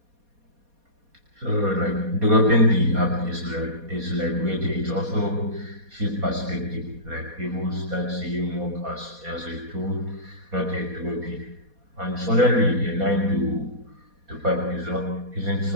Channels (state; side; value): late; left; 4.2 ms